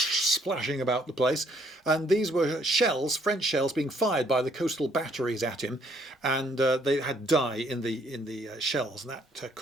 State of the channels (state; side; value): normal; both; correlation 0.66